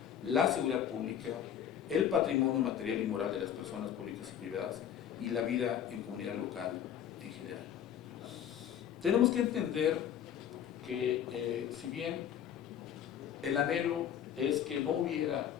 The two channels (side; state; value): right; quieter; 9.5 dB